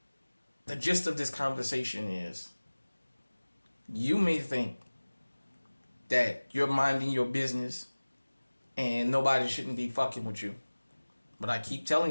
The gist of this conversation is, you may think that you're minding your business and nobody shouldn't be fucking with you. But I keep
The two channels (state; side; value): inverted; both; correlation -1.00